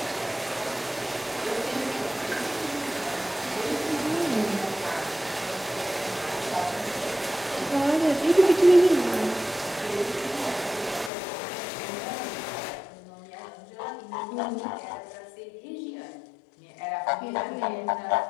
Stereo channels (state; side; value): drops out; right; at 11.1 s